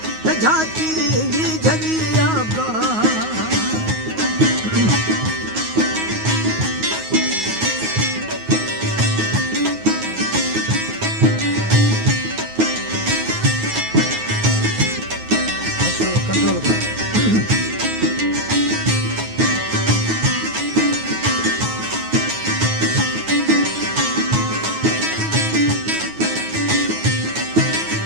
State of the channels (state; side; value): late; left; 9.4 ms